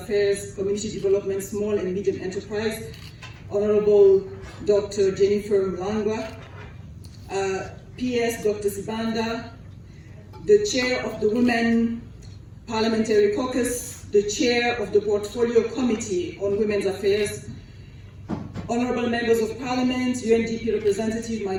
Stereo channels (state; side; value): identical; both; correlation 1.00